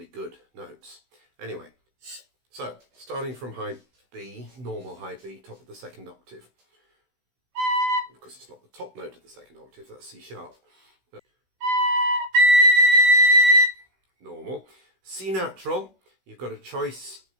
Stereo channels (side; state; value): left; late; 16 ms